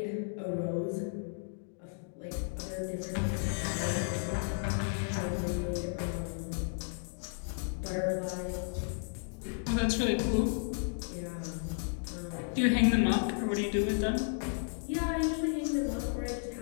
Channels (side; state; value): right; silent; digital silence